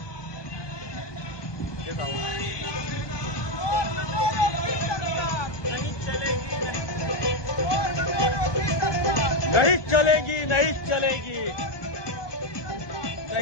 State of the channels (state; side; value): late; right; 1.2 ms